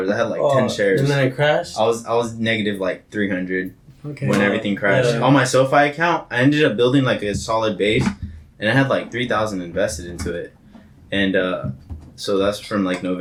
I had like 10 shares. And then it crashed. I was negative like 300 Okay. when everything crashed. Yeah. On my SoFi account, I ended up building like a solid base, and I had like 3,000 invested into it, and so that's from like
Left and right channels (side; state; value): both; identical; correlation 1.00